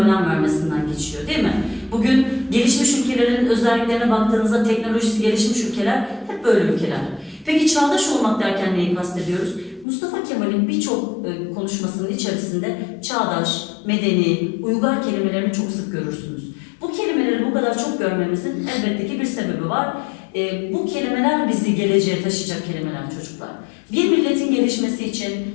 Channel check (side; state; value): right; drops out; at 9.9 s